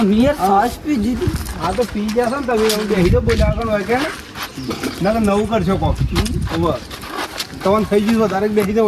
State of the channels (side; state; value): both; identical; correlation 1.00